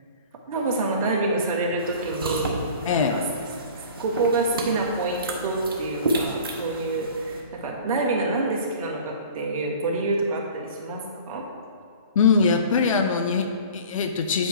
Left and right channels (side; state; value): both; inverted; correlation -0.43